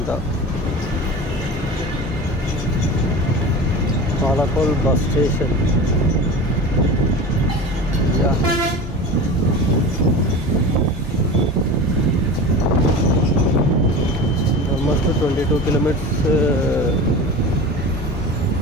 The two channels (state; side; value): normal; both; correlation 0.32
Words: Palakol bus station. Almost 22 kilometres